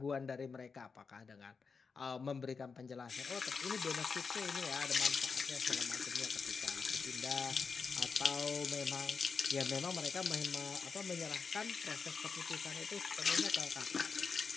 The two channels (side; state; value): right; quieter; 5.2 dB